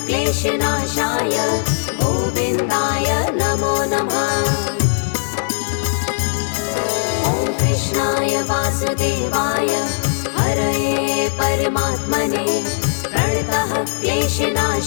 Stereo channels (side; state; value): right; silent; digital silence